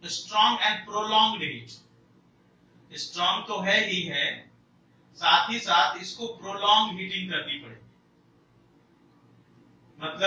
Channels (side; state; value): both; identical; correlation 1.00